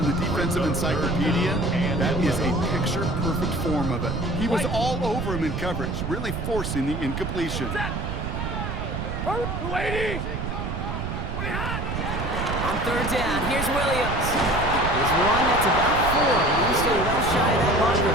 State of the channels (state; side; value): noise; right; rumble, 4 dB below the sound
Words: the defensive encyclopedia, that is a picture-perfect form of it. He was all over him in coverage, really forcing the incompletion. Yellow 80. On 3rd down, here's Williams. There's one that's about 4. He's still well shy of that marker.